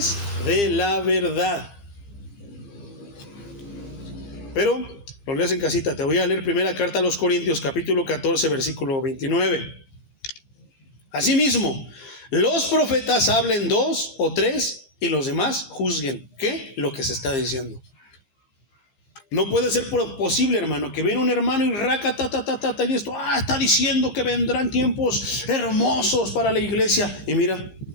de la verdad. Pero lo lees en casita. Te voy a leer primera carta a los Corintios, capítulo 14, versículo 29. Asimismo, los profetas hablen 2 o 3 y los demás juzguen. ¿Qué? Lo que se está diciendo. No puede ser posible, hermano, que viene un hermano y y esto, está diciendo que vendrán tiempos hermosos para la iglesia. Y mira,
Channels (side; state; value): right; late; 15 ms